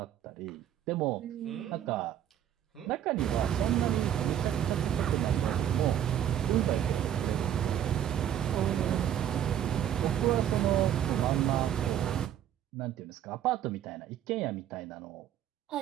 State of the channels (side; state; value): left; quieter; 10.4 dB